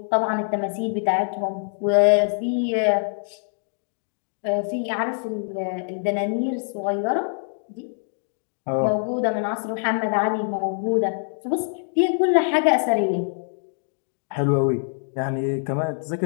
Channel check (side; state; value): right; silent; digital silence